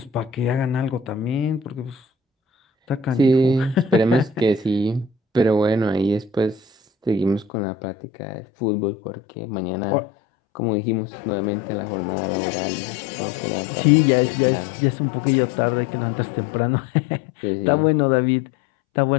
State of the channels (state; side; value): drops out; right; at 7.5 s